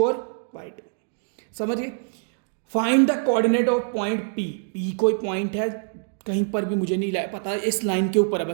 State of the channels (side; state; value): left; silent; 62 dB below the other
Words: और y2। समझ गए? Find the coordinate of point P। P कोई पॉइंट है कहीं पर भी, मुझे नहीं पता, इस लाइन के ऊपर है,